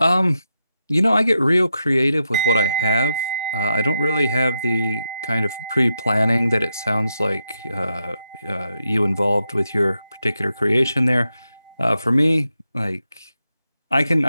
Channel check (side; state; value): both; inverted; correlation -0.85